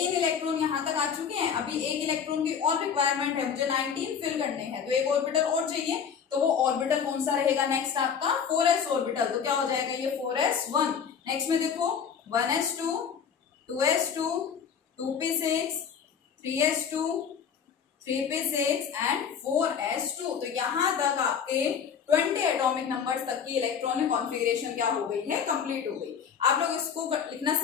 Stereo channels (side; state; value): right; quieter; 7.2 dB